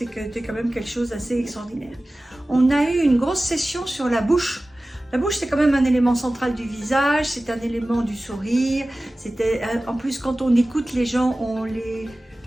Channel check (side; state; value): both; normal; correlation 0.97